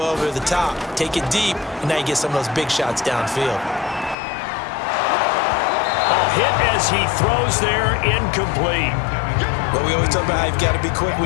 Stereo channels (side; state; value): right; drops out; at 4.2 s